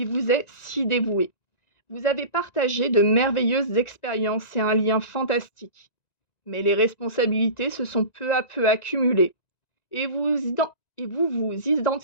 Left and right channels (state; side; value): late; right; 1.9 ms